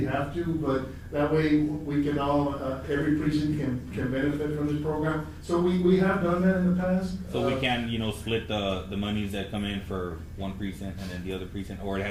have to, but that way we can all, every precinct can benefit from this program. So we have done that in the past. So we can, split the monies that come in for one precinct and then the other precinct, or it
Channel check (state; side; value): identical; both; correlation 1.00